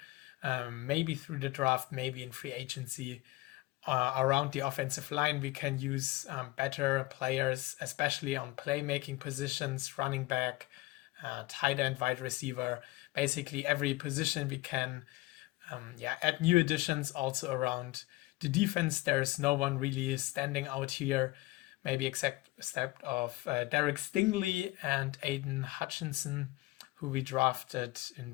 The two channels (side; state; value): right; quieter; 20.2 dB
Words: Maybe through the draft, maybe in free agency. Around the offensive line, we can use better players, especially on playmaking positions, running back, tight end, wide receiver. Basically, every position we can add new additions also around the defense. There's no one really standing out here, maybe except of Derek Stingley and Aiden Hutchinson, who we drafted in